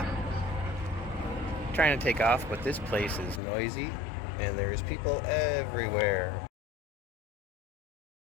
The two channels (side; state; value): right; drops out; at 3.4 s